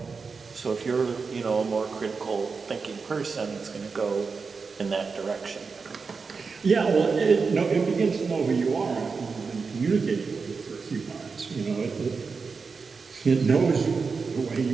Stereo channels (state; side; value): quieter; left; 4.9 dB